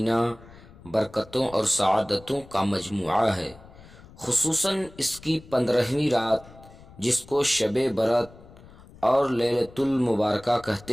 برکتوں اور سعادتوں کا مجموعہ ہے، خصوصاً اس کی 15ویں رات جس کو شب برات اور لیلۃ المبارکہ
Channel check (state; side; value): noise; left; rumble, 21 dB below the sound